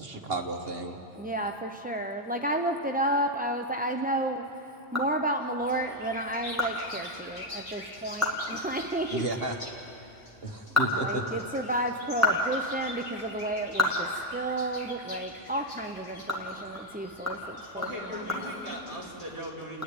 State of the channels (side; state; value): both; normal; correlation 0.04